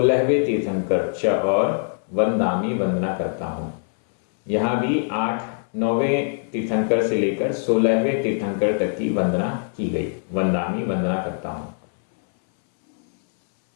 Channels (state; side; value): silent; right; 62 dB below the other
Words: तीर्थंकर च और वंदामी वंदना करता हूँ। यहाँ भी 9वें तीर्थंकर से लेकर 16वें तीर्थंकर तक की वंदना की गई। वंदामी वंदना करता हूँ।